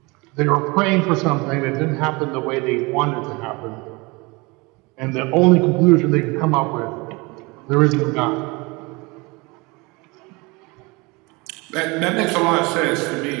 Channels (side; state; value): left; quieter; 25.8 dB